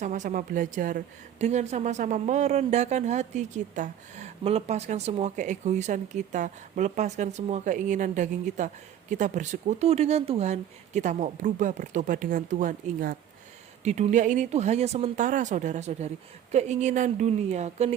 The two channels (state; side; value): quieter; left; 10.2 dB